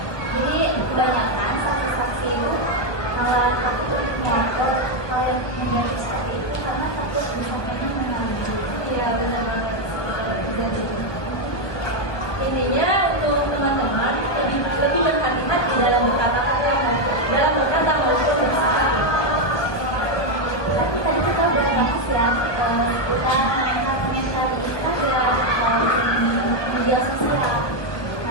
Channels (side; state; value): right; late; 1.2 ms